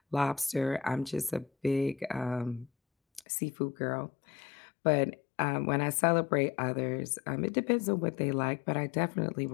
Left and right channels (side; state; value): right; drops out; at 3.2 s